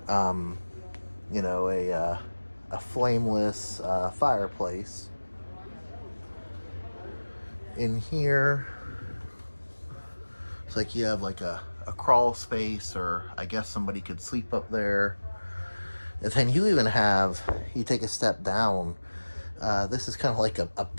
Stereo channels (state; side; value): inverted; both; correlation -1.00